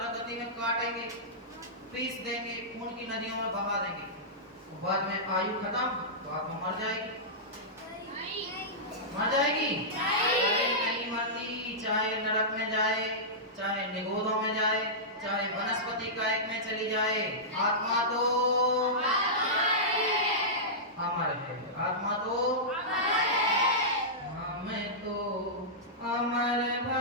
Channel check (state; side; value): normal; both; correlation -0.15